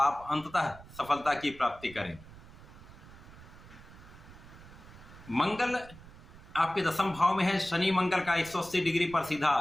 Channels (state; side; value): noise; right; rumble, 19 dB below the sound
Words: अंततः सफलता की प्राप्ति करेंगे। मंगल आपके 10वें भाव में है। शनि मंगल का 180 डिग्री पर सीधा